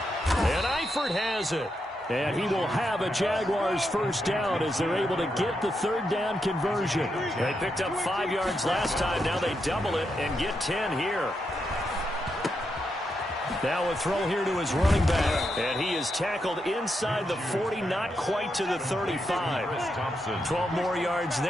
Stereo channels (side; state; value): both; normal; correlation 0.83